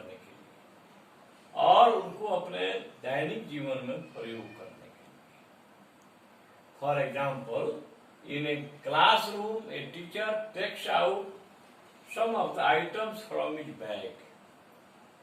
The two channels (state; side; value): identical; both; correlation 1.00